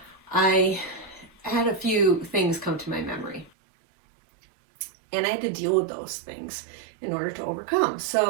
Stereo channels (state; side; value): drops out; left; at 3.5 s